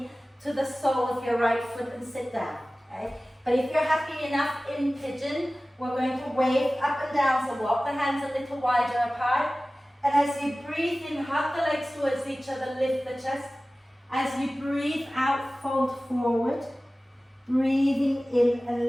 to the sole of your right foot and sit down. Okay? But if you're happy enough in pigeon, we're going to wave up and down, so walk the hands a little wider apart. And as you breathe in, hug the legs towards each other, lift the chest. As you breathe out, fold forward. Breathing in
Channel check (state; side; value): normal; both; correlation 0.97